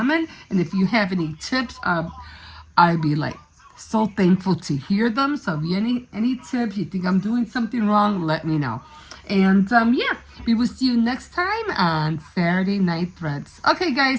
And if you have any tips, I'd be like so thankful to hear them. So if you any tips, you think I'm doing something wrong, let me know. And yeah, we will see you next time on Saturday Night Threads. Okay,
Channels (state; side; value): identical; both; correlation 1.00